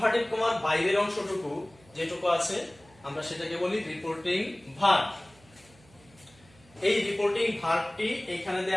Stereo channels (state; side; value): noise; right; hum, 28 dB below the sound